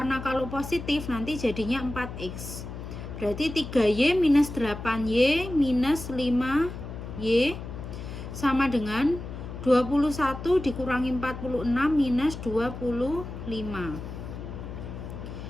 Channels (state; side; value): noise; left; hum, 9 dB below the sound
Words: kalau positif nanti jadinya 4x. Berarti 3y minus 8y minus 5y sama dengan 21 dikurangi 46 minus 25.